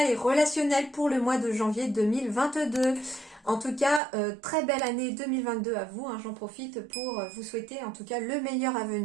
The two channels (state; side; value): drops out; left; at 4.0 s